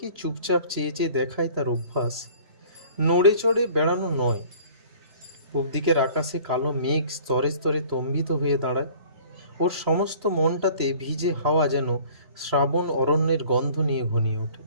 চুপচাপ চেয়ে চেয়ে দেখায় তার অভ্যাস, নড়ে চড়ে বেড়ানো নয়। পূব দিকের আকাশে কালো মেঘ স্তরে স্তরে তম্বিত হয়ে দাঁড়ায়। ওর সমস্ত মনটাতে ভিজে হাওয়া যেন শ্রাবণ অরণ্যের গন্ধ নিয়ে ঘনিয়ে ওঠে।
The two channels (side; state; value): left; late; 3.0 ms